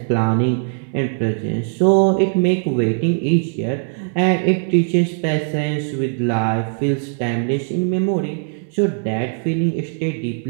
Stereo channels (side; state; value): left; silent; 60 dB below the other